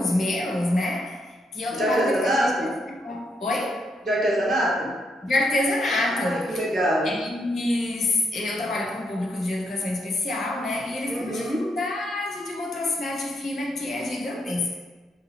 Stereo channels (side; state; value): both; normal; correlation 0.77